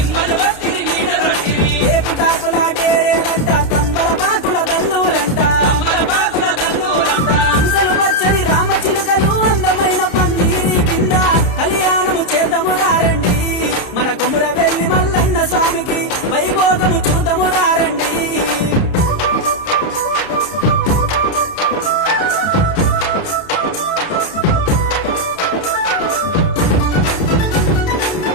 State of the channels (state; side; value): late; right; 30 ms